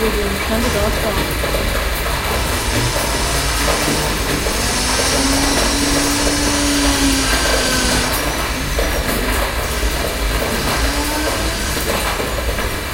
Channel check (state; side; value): identical; both; correlation 1.00